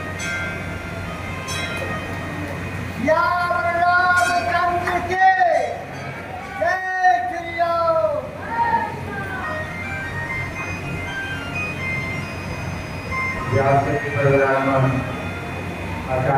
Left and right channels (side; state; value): both; identical; correlation 1.00